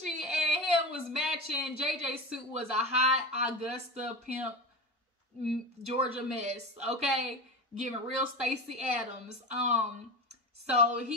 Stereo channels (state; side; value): normal; both; correlation 0.25